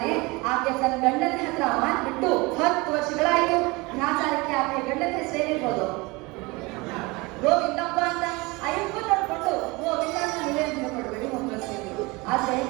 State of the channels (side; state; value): left; quieter; 24.6 dB